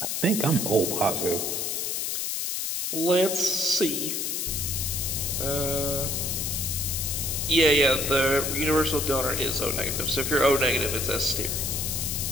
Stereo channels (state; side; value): noise; left; hiss, 1 dB below the sound